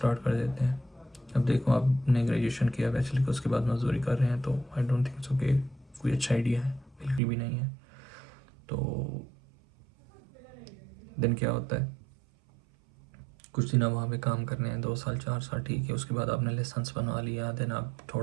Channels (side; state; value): left; drops out; at 7.2 s